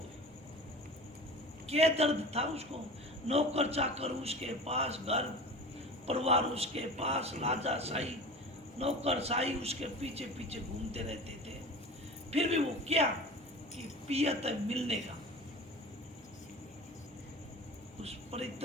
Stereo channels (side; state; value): both; normal; correlation 0.35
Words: क्या दर्द था उसको? नौकर चाकर उसके पास, घर परिवार उसके पास, राजा शाही नौकर शाही उसके पीछे पीछे घूमते रहते थे, फिर भी वो क्या कि पियत मिलने का, उस